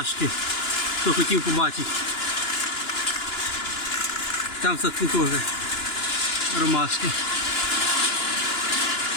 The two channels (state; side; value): late; right; 2.9 ms